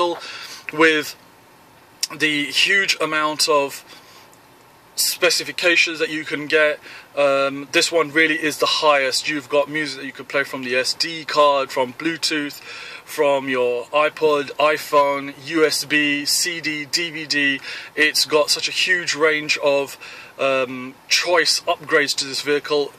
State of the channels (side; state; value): both; identical; correlation 1.00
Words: with the huge amount of specifications that you can get, this one really is the highest. You've got music that you can play from the SD card, from Bluetooth, from your iPod, iPhone, USB, CD, DVD. It's got such a huge range of choice upgrades to this vehicle,